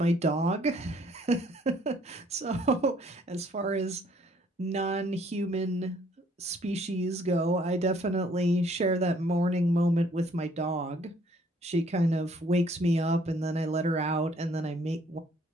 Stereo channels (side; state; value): both; normal; correlation 0.62